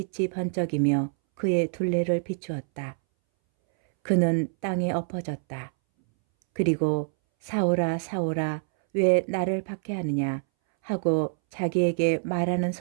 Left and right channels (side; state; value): left; silent; 61 dB below the other